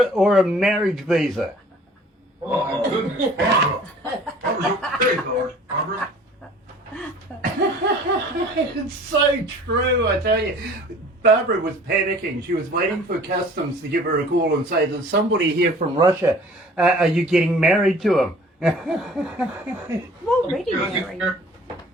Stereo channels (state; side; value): normal; both; correlation 0.49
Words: or a marriage visa. Oh, my goodness, Barbara. Barbara's okay, Lord. Barbara. It's so true, I tell you. Barbara was panicking. She was waiting for customs to give her a call and say, there's somebody here from Russia. Are you getting married to him? I'm already married.